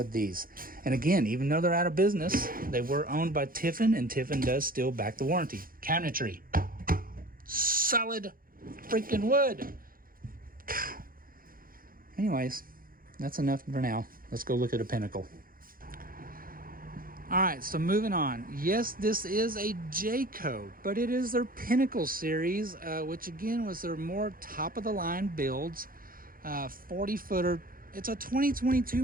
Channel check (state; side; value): late; left; 0.41 ms